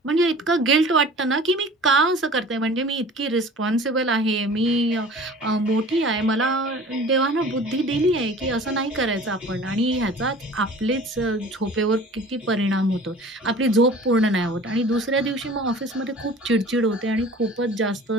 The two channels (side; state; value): both; normal; correlation 0.44